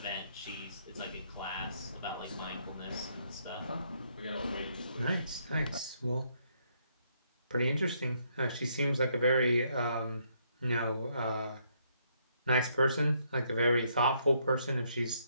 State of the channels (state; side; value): inverted; both; correlation -0.73